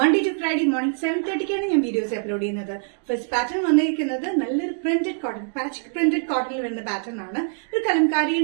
ടു ഫ്രൈഡേ മോർണിംഗ് 7:30 ഞാൻ വീഡിയോസ് അപ്ലോഡ് ചെയ്യുന്നത്. ഫസ്റ്റ് പാറ്റേൺ വന്നിരിക്കുന്നത് നല്ലൊരു പ്രിന്റഡ് കോട്ടൺ, പാച്ച് പ്രിന്റഡ് കോട്ടണിൽ വരുന്ന പാറ്റേൺ ആണ്. ഒരു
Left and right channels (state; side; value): silent; left; digital silence